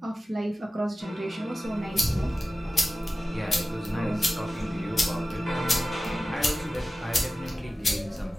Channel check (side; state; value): both; normal; correlation 0.95